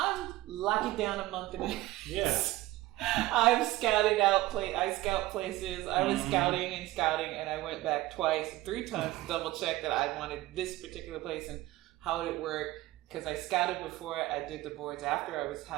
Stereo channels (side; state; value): left; quieter; 17.5 dB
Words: lock it down a month in advance. Yeah. I've scouted out I scout places. I was scouting, and I went back 3 times to double check that I wanted this particular place and how would it work. Because I scouted before I did the boards after I was